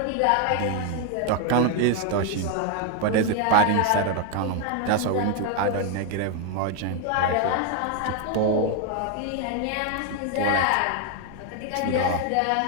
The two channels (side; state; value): both; different; correlation 0.01